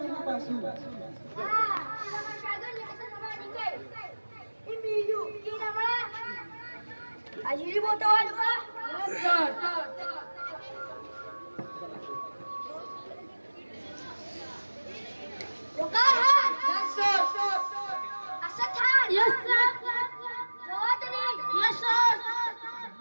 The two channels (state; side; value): inverted; both; correlation -1.00